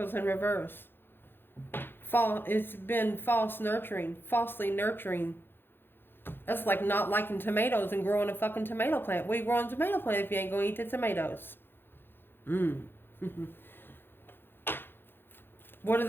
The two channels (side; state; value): right; late; 0.10 ms